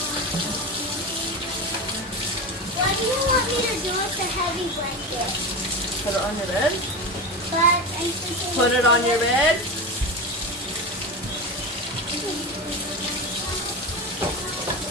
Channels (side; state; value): both; normal; correlation 0.22